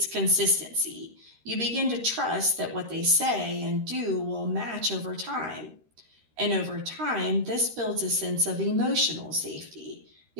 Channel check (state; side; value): late; left; 13 ms